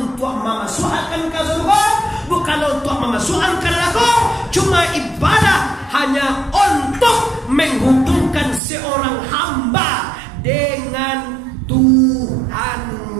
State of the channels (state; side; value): drops out; left; at 8.6 s